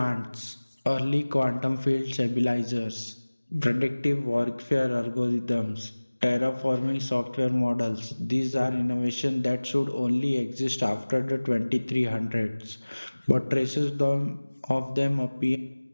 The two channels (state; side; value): inverted; both; correlation -1.00